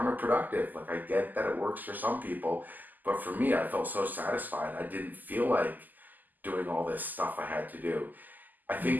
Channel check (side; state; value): left; late; 0.085 ms